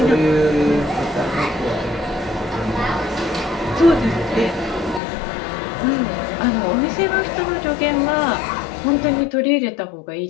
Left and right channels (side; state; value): right; drops out; at 5.0 s